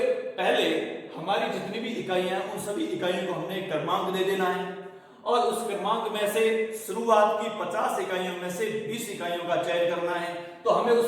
पहले हमारी जितनी भी इकाइयां हैं, उन सभी इकाइयों को हमने एक क्रमांक दे देना है, और उस क्रमांक में से शुरुआत की 50 इकाइयों में से 20 इकाइयों का चयन करना है। तो हमें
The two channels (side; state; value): both; identical; correlation 1.00